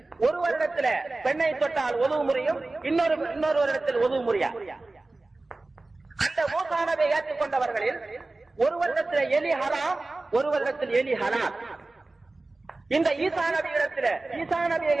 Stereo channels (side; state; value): left; quieter; 3.1 dB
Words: ஒரு வருடத்தில் பெண்ணை தொட்டால் ஒது முறியும், இன்னொரு வருடத்தில் ஒது முறியா. அந்த மூசா நபியை ஏற்றுக்கொண்டவர்களில் ஒரு வருடத்தில் எலி ஹராம், ஒரு வருடத்தில் எலி ஹலால். இந்த ஈசா நபியை